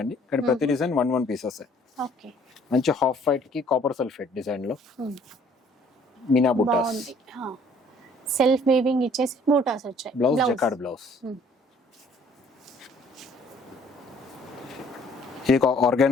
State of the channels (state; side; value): normal; both; correlation 0.58